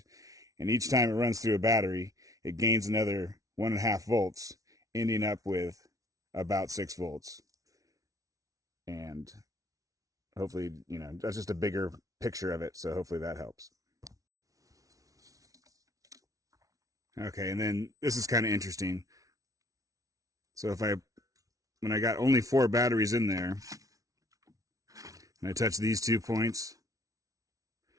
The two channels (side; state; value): left; late; 0.17 ms